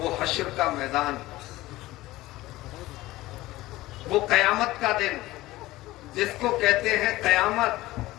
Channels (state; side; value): quieter; right; 17.8 dB